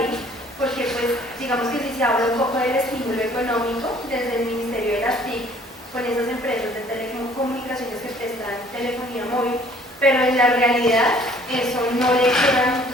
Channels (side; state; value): both; normal; correlation 0.56